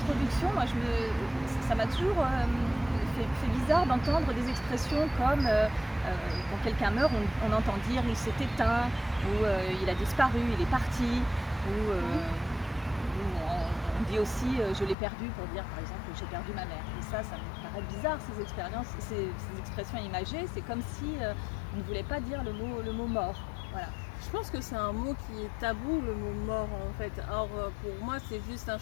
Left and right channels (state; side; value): drops out; right; at 15.0 s